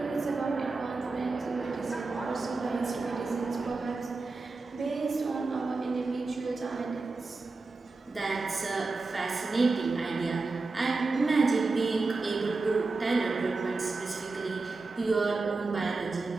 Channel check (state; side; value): quieter; left; 3.7 dB